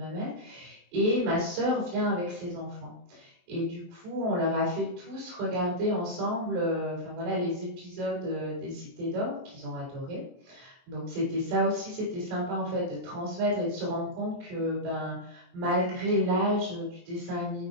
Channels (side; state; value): left; late; 23 ms